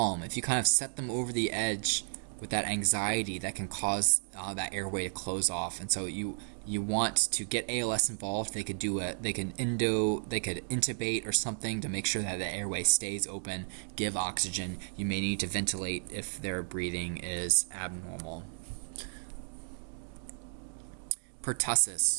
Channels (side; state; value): left; silent; digital silence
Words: If you kind of set them over the edge with that anxiety, that can cause that airway to close off. And so you want to get ALS involved. They could intubate or something to make sure that the airway stays open, give oxygen. You may need to ventilate if their breathing is abnormal.